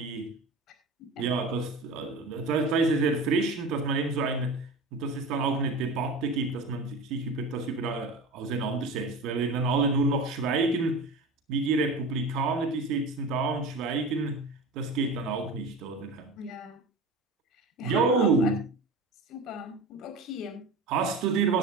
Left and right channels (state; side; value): quieter; left; 3.1 dB